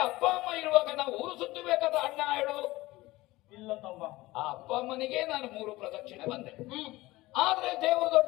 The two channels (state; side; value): quieter; right; 19.1 dB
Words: ಅಪ್ಪ ಅಮ್ಮ ಇರುವಾಗ ನಾವು ಊರು ಸುತ್ತಬೇಕಾದ ಅಣ್ಣ ಹೇಳು. ಇಲ್ಲ ತಮ್ಮ. ಆ ಅಪ್ಪ ಅಮ್ಮನಿಗೆ ನಾನು 3 ಪ್ರದಕ್ಷಿಣೆ ಬಂದೆ. ಆದ್ರೆ ದೇವರು